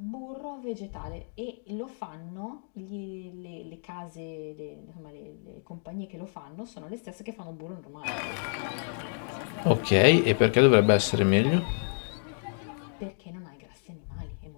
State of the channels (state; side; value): silent; right; 58 dB below the other